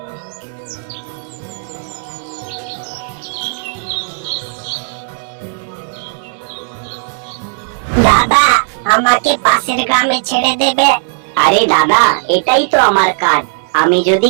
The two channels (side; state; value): left; silent; digital silence